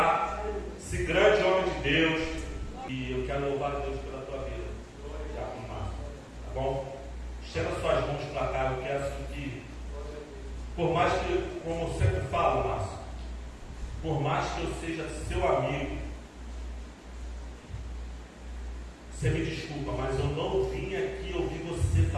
esse grande homem de Deus. E eu quero louvar a Deus pela tua vida. Já com Márcio, tá bom? Estenda suas mãos para cá. Eu quero que, por mais que, como eu sempre falo, Márcio, por mais que eu seja seu amigo, você me desculpa, mas eu não vim aqui ouvir você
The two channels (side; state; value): both; identical; correlation 1.00